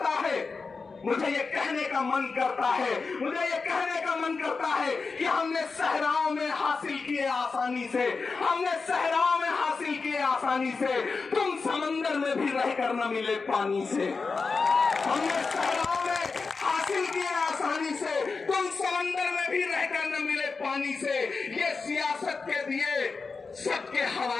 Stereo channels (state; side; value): quieter; right; 4.5 dB